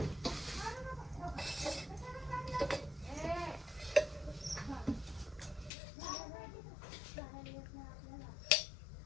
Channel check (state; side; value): drops out; right; at 5.7 s